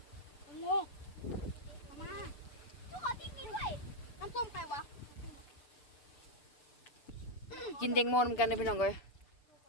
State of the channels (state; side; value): late; right; 6.8 ms